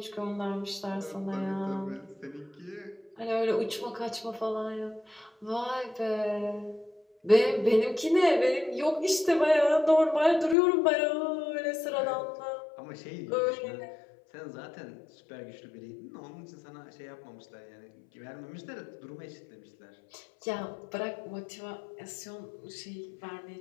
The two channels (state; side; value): drops out; right; at 10.6 s